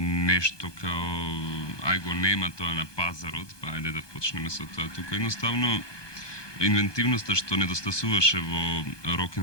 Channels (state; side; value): late; right; 1.2 ms